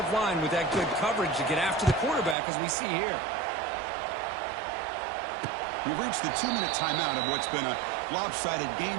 line with that good coverage to get after the quarterback, as we see here. We've reached the 2-minute timeout of what's been a lopsided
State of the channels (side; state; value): left; drops out; at 2.4 s